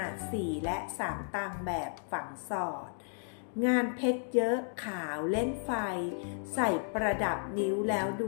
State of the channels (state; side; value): silent; right; digital silence